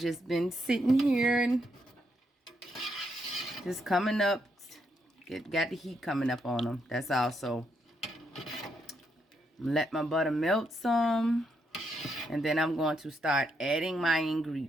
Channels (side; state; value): both; normal; correlation 0.78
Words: been sitting here and just coming up. Got the heat coming up on them. That's also. Let my butter melt some. And then I'm going to start adding my